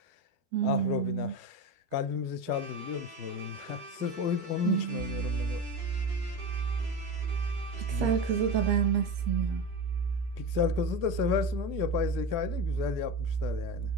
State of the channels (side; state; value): left; late; 12 ms